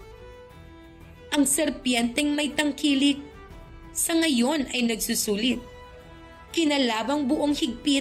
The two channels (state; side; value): identical; both; correlation 1.00